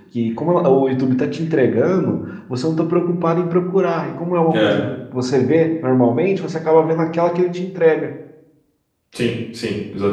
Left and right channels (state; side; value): identical; both; correlation 1.00